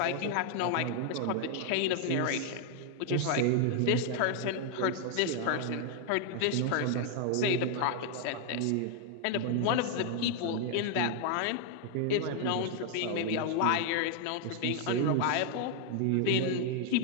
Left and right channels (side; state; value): both; different; correlation 0.00